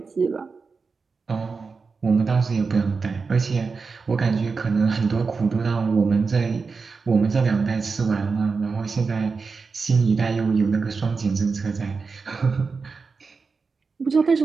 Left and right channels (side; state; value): left; quieter; 4.7 dB